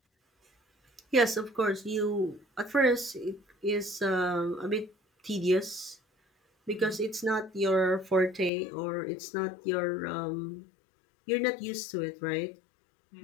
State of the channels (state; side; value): drops out; right; at 8.5 s